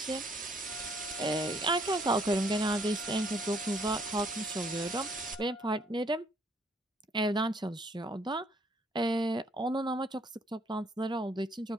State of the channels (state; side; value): normal; both; correlation 0.65